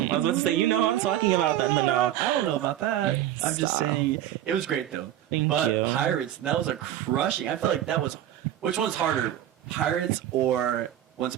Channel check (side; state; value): left; quieter; 12.1 dB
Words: was about to say, you know who I'm talking about then, but no. I don't know about that. I'm just saying it was great though. Thank but you. Pirates, that was a crushing. I feel like that was. Which one's harder, Pirates or Once